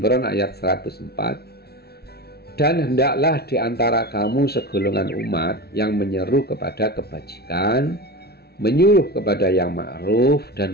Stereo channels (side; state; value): right; late; 0.46 ms